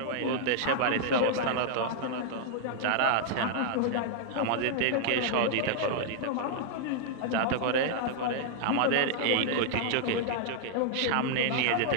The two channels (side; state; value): both; different; correlation -0.01